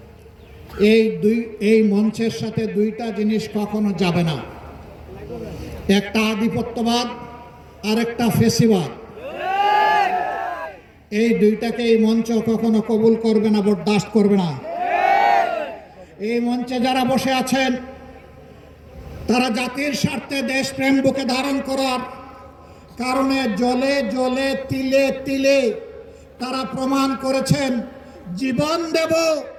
এই মঞ্চের সাথে 2টা জিনিস কখনো যাবে না। একটা আধিপত্যবাদ আর একটা ফেসিবাদ। এই 2টাকে এই মঞ্চ কখনো কবুল করবে না, বরদাস্ত করবে না। এই মঞ্চে যারা বসে আছেন তারা জাতির স্বার্থে দেশপ্রেম বুকে ধারণ করার কারণে জলে জলে তিলে তিলে তারা প্রমাণ করেছেন জীবন দেব,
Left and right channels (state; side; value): identical; both; correlation 1.00